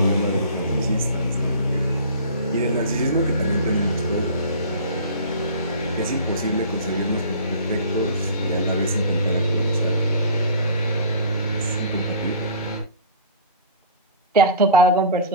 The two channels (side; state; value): both; inverted; correlation -0.40